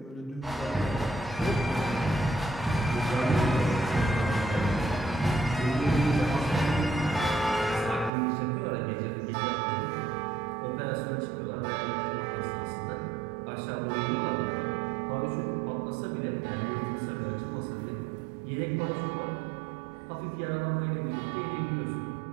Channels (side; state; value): left; drops out; at 8.1 s